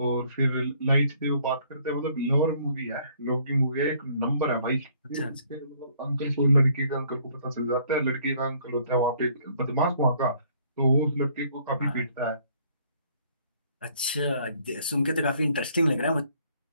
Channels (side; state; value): both; inverted; correlation -0.62